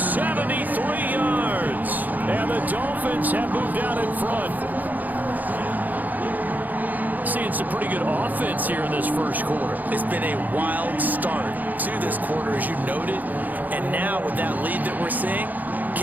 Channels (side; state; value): left; late; 0.082 ms